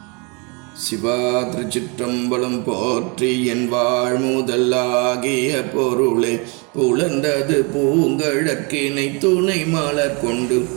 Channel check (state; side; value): quieter; left; 31.7 dB